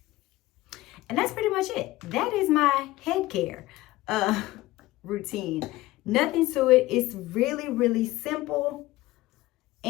And that's pretty much it. That is my head care routine. Nothing to it. It's really, really simple.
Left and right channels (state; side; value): quieter; right; 18.0 dB